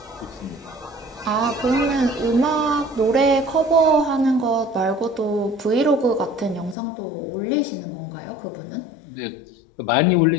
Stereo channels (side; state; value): right; drops out; at 6.8 s